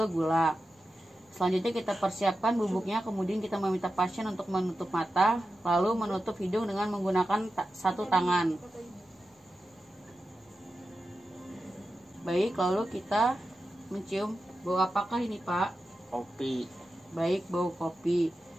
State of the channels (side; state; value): both; normal; correlation 0.91